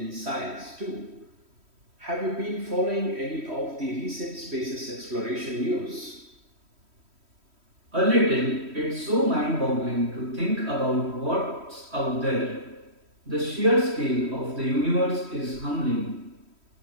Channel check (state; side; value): late; left; 3.1 ms